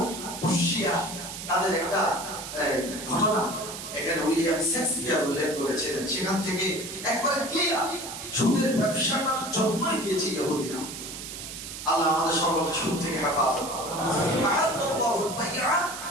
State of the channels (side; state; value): right; noise; hiss, 9 dB below the sound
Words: পুশিয়া, তাদের একটা ঘটনা এখানে উইলিয়াম শেক্সপিয়ার উল্লেখ করেছিলেন। সেখান থেকে একবারে ক্লিয়ার সুদের ব্যবসাটার জন্মই দিয়েছে ইহুদিরা। আল্লাহ আমাদের সকলকে সুদ থেকে হেফাজত করুন। আহাল্লাহুল বাইআ